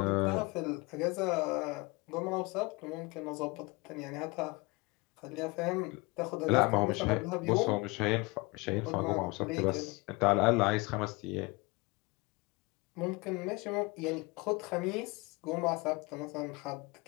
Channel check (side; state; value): right; quieter; 25.8 dB